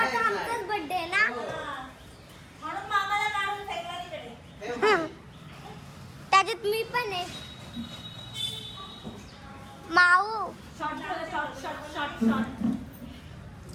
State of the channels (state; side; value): identical; both; correlation 1.00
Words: आमचाच बर्थडे आहे ना. म्हणून मामाला काढून फेकला तिकडे. त्याच्यात मी पण आहे. माऊ